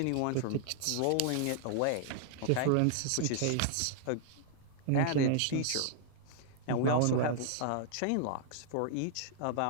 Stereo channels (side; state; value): both; different; correlation -0.01